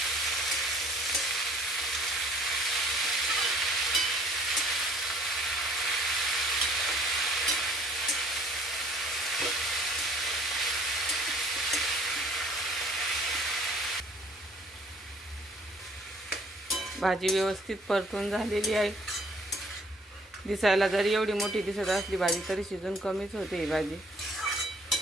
भाजी व्यवस्थित परतून झालेली आहे। दिसायला जरी एवढी मोठी दिसत असली भाजी, तरी शिजून कमीच होते ही भाजी।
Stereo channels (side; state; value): both; normal; correlation 0.57